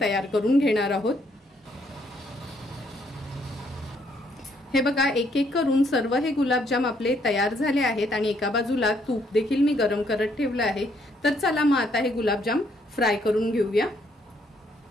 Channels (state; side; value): normal; both; correlation 0.70